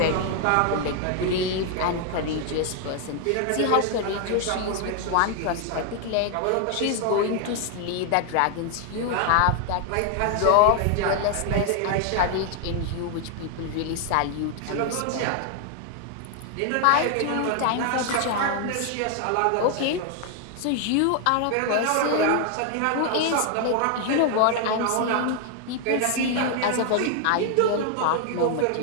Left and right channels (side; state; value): both; different; correlation 0.00